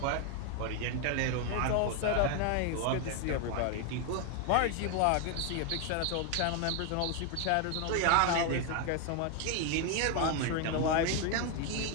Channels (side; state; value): both; different; correlation 0.01